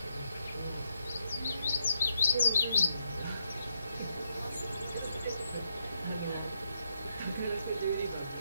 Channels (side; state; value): both; inverted; correlation -0.79